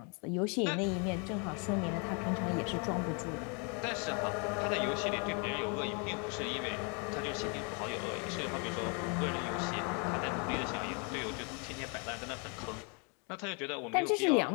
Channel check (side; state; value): right; quieter; 35.2 dB